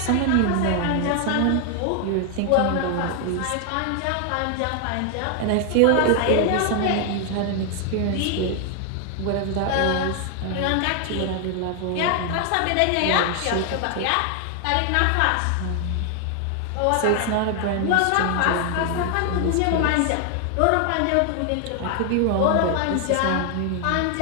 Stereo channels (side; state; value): both; different; correlation 0.00